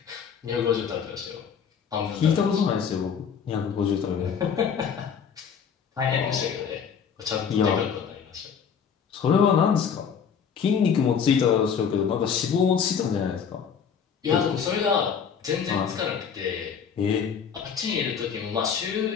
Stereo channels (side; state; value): right; quieter; 7.1 dB